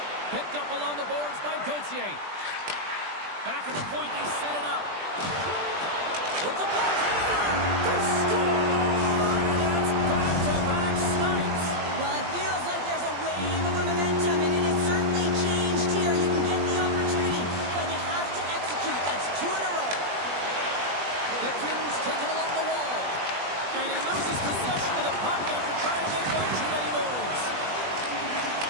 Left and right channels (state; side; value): late; left; 20 ms